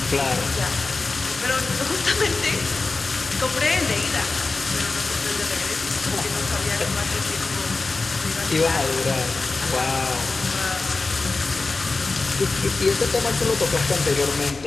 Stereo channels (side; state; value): right; quieter; 3.7 dB